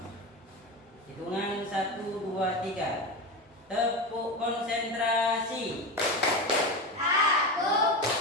Hitungan 1, 2, 3. Tepuk konsentrasi. Aku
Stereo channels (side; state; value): both; normal; correlation 0.20